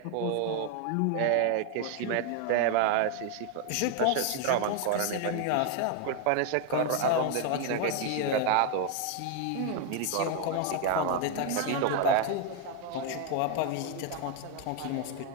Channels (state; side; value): different; both; correlation 0.01